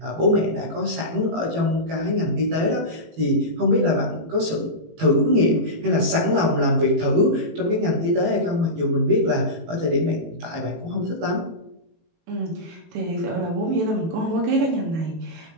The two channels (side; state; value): left; late; 18 ms